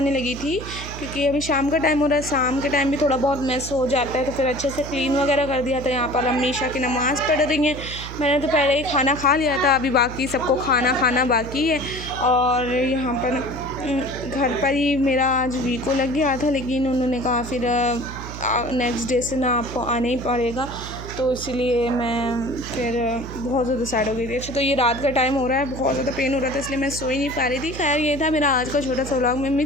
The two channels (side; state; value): right; noise; hum, 10 dB below the sound